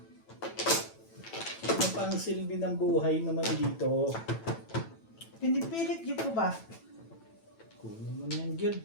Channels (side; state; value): right; late; 9.0 ms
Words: Ano pa ang silbi ng buhay naman dito? Pinipilit niyo po ba? Kunin mo na yan, Jud.